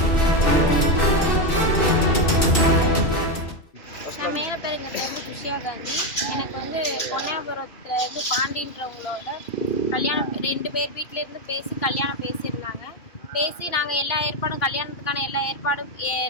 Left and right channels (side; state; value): right; late; 2.8 ms